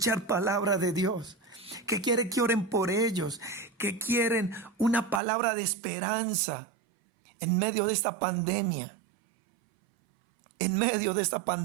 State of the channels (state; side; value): drops out; left; at 5.2 s